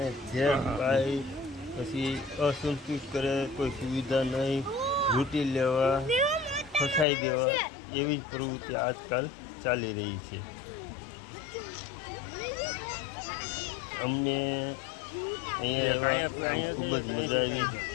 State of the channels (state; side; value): drops out; right; at 7.1 s